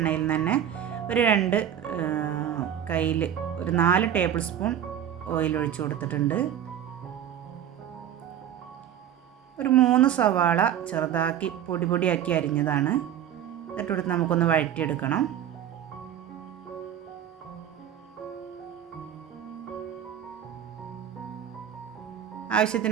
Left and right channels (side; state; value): left; quieter; 10.0 dB